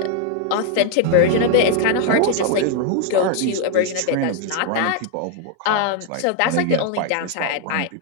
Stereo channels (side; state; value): both; different; correlation 0.00